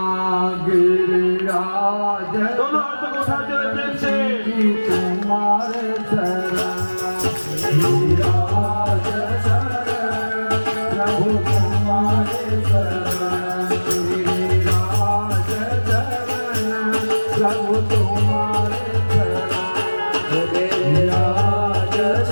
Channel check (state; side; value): inverted; both; correlation -1.00